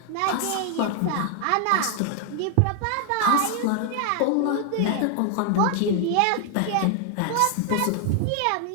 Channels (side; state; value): both; different; correlation 0.00